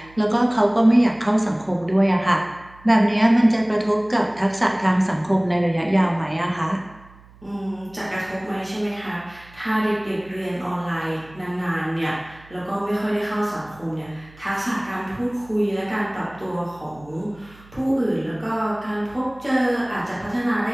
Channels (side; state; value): right; noise; hum, 24 dB below the sound